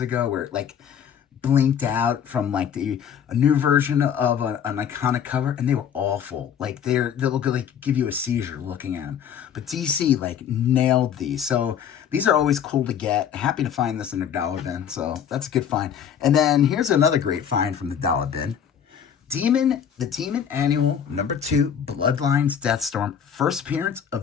where it like blinked out from like a new version of an iconic cover, and they were awful. Like they'll like give you a seizure looking at them. But DC like nailed these. So these are always cool to get. Happy to find this in a dollar bin. So that's a good find. And then here's another great find from the dollar bin. The Demon Annual number 2, Bloodlines Deathstorm, first appearance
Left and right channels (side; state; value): right; quieter; 8.4 dB